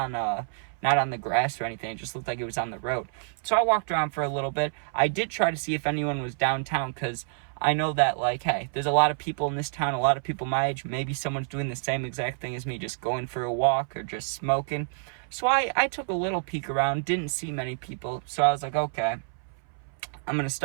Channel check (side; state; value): left; silent; 59 dB below the other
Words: the grass or anything. It just looked like it was on the road. So I walked around for a little bit. I did try to see if anyone was downtown, because I know that, like, hey, there's a lot of people in this town, a lot of people my age. Maybe someone's doing the same exact thing as me, just going for a walk or just smoking. So I took a little peek around, didn't see many people. So I was like, okay, I'm going to